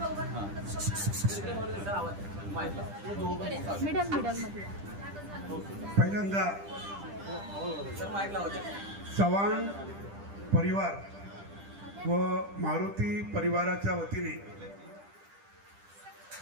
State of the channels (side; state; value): left; late; 10 ms